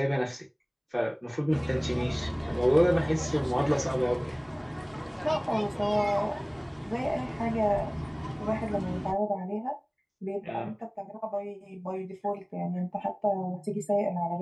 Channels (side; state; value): both; identical; correlation 1.00